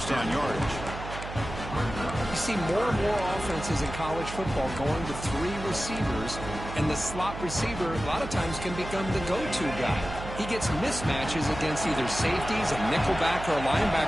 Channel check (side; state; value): right; noise; hum, 9 dB below the sound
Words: down yardage. You see more and more offenses in college football going to 3 receivers, and the slot receiver a lot of times can become the go-to guy. He gets mismatches against either safeties, a nickelback, or a